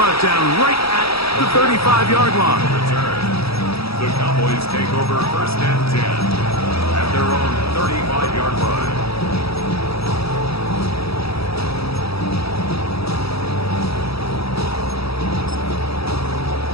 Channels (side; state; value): right; late; 0.77 ms